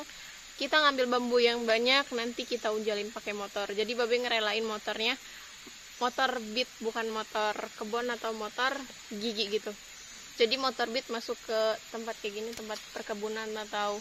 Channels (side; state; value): both; identical; correlation 1.00